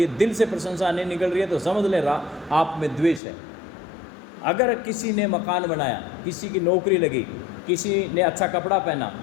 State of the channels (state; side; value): drops out; right; at 3.2 s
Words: दिल से प्रशंसा नहीं निकल रही है तो समझ ले आप में द्वेष है। अगर किसी ने मकान बनाया, किसी की नौकरी लगी, किसी ने अच्छा कपड़ा पहना,